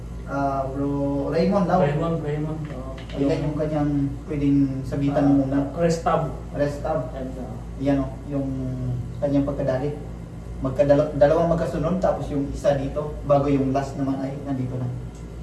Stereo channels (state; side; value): identical; both; correlation 1.00